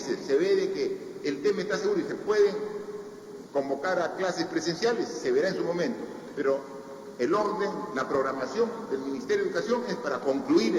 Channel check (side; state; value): both; identical; correlation 1.00